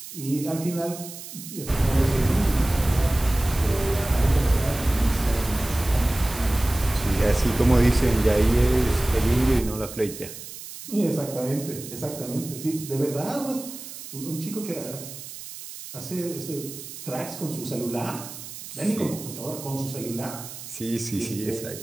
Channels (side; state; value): right; noise; hiss, 12 dB below the sound